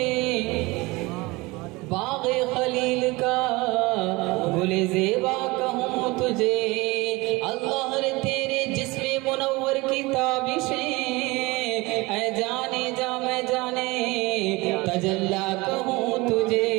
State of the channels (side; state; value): left; quieter; 23.1 dB